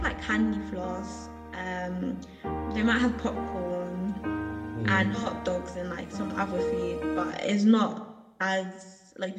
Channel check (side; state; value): both; identical; correlation 1.00